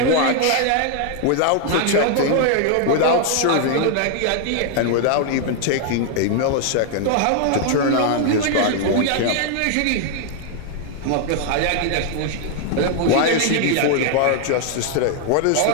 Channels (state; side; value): different; both; correlation 0.00